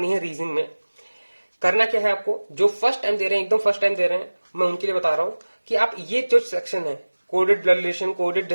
है रीजनिंग में। करना क्या है आपको, जो फर्स्ट टाइम दे रहे हैं, एकदम फर्स्ट टाइम दे रहे हैं, मैं उनके लिए बता रहा हूं कि आप ये जो सेक्शन है, coded blood relation, coded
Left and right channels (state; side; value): inverted; both; correlation -1.00